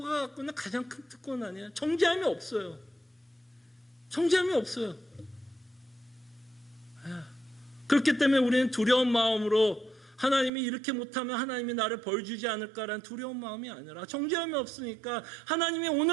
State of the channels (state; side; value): drops out; left; at 10.5 s